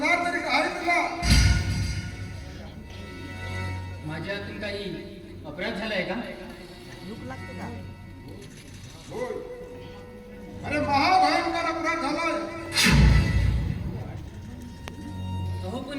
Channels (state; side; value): identical; both; correlation 1.00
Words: तरी काय तुला? माझ्यातून काही अपराध झालाय का? दुःख लागते का? होय, अरे महाभयंकर अपराध झालाय. अहो पण